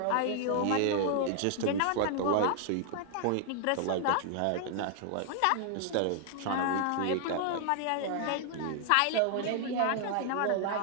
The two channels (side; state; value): both; different; correlation 0.00